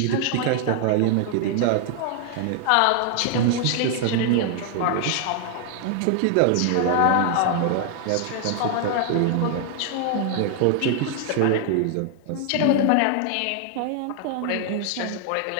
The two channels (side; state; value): both; different; correlation 0.00